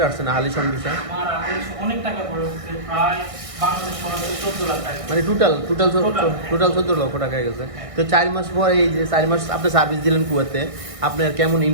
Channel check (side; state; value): left; late; 1.6 ms